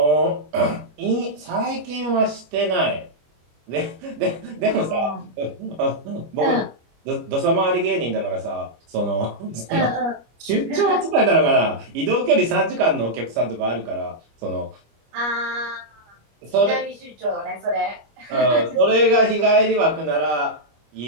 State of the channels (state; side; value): late; left; 25 ms